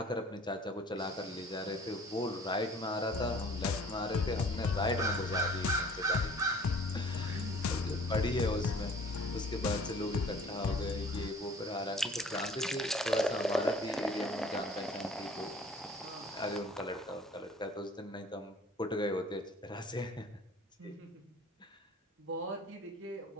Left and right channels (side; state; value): both; normal; correlation 0.51